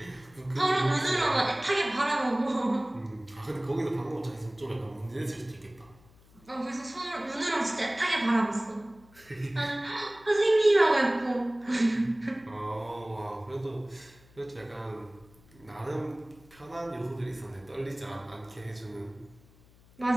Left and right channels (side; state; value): left; noise; hum, 27 dB below the sound